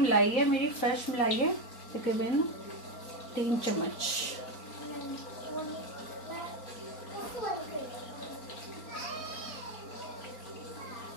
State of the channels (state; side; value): late; right; 4.0 ms